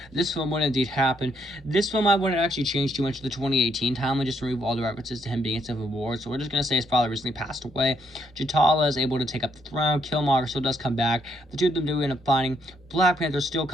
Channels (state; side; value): normal; both; correlation 0.74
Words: this film would indeed happen, this film I wouldn't actually change too much of the 2018 timeline, just remove all the references to him being in Civil War. So we're just going to say his father recently passed away. T'Challa is able to take up the throne. Killmonger still does come back. The two of them do end up fighting. Black Panther still